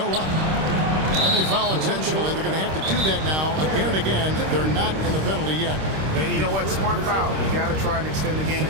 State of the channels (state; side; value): late; left; 26 ms